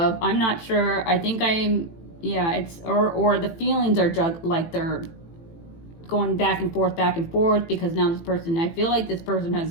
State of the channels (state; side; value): late; right; 18 ms